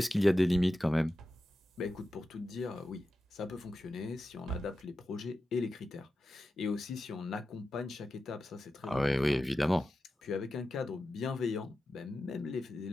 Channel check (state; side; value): normal; both; correlation 0.92